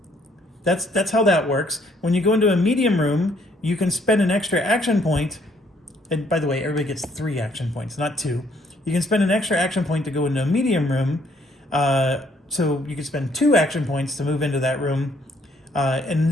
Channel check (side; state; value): both; normal; correlation 0.66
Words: that's how that works. When you go into a medium room, you can spend an extra action point. And by the way, everybody gets 3 action points, not 2. You can spend an extra action point to go into a medium room. So you can spend 2 action points to move into that room and